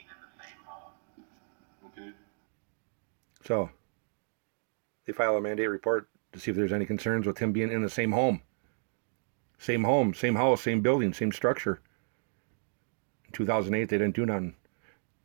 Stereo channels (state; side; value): silent; left; digital silence